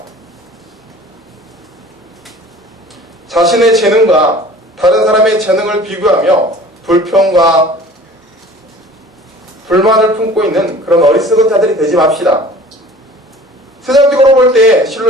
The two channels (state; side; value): normal; both; correlation 0.46